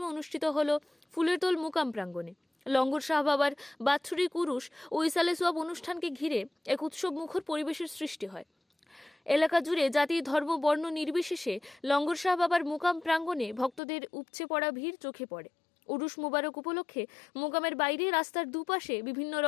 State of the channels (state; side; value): drops out; right; at 13.8 s